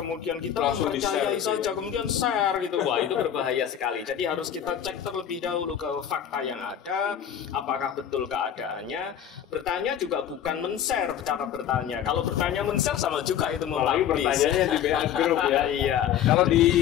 kita mempercayai saja kemudian share gitu. Wah, itu berbahaya sekali. Jadi harus kita cek terlebih dahulu ke fakta yang ada, apakah betul keadaan pertanyaannya. Bertanya juga bukan men-share cara bertanya. Kalau bertanya men-share sama juga itu apalagi mempublish. pertanyaannya di WA grup ya. Iya. Kalau di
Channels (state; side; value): quieter; right; 9.7 dB